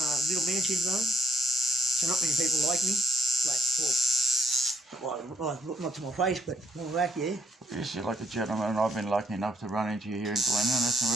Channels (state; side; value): normal; both; correlation 0.69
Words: little man syndrome. So not many people like me. Not to my face, but more like, yeah. Yes, you're like a gentleman, and I've been lucky enough to run into you here in Glen Innes, and